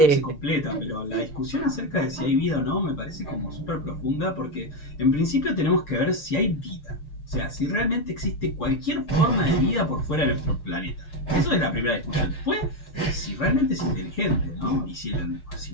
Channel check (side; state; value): right; late; 6.7 ms